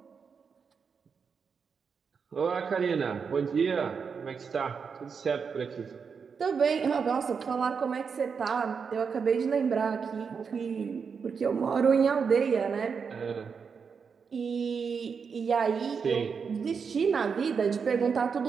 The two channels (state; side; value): quieter; left; 5.9 dB